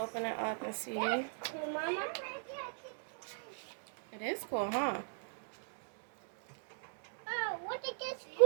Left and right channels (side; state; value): left; silent; digital silence